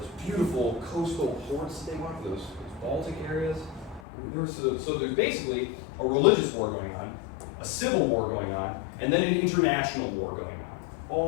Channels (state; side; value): drops out; right; at 4.0 s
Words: beautiful coastal ports they want for those Baltic areas. So there's basically a religious war going on, a civil war going on, and then an international war going on,